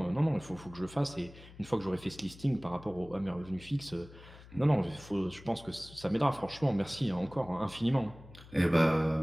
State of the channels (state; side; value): noise; left; hum, 19 dB below the sound